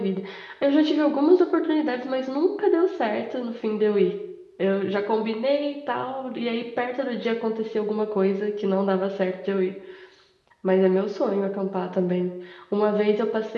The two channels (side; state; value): both; identical; correlation 1.00